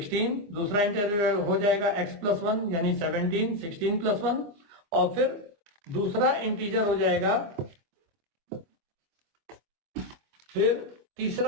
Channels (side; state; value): left; late; 24 ms